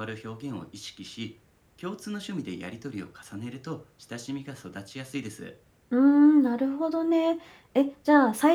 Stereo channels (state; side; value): identical; both; correlation 1.00